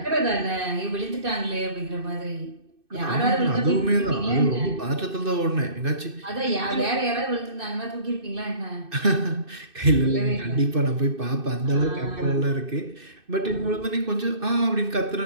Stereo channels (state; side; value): late; left; 2.6 ms